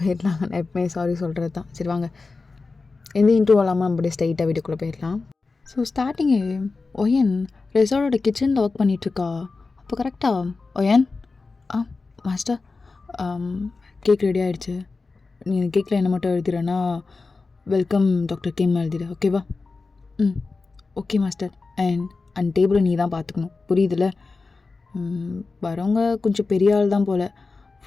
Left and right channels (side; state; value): right; quieter; 4.0 dB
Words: நான் எப்பவுமே சாரி சொல்கிறது தான். சரி வாங்க, எந்த இன்ட்ரூவ் இல்லாமல் நம்ம அப்படியே ஸ்ட்ரைட்டாக வீட்டுக்குள்ளே போயிடலாம். ஸோ ஸ்டார்டிங்கு ஒயன் ரெசார்ட்டோட கிச்சனில் ஒர்க் பண்ணிகிட்ருக்கா. அப்போ கரெக்டாக ஒயன் மாஸ்டர் கேக் ரெடி ஆகிடுச்சு. நீ கேக்கில் என்ன மட்டும் எழுதிடுறேன்னா வெல்கம் டாக்டர் கிம் எழுதிடு, ஓகேவா? Okay master. அண்ட் டேபிளை நீ தான் பார்த்துக்கணும், புரியுதுல்ல? வரவங்க கொஞ்சம் பெரிய ஆள் தான் போல்.